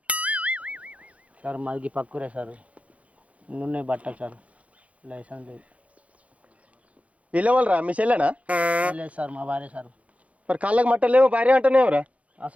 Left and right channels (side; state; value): left; late; 0.065 ms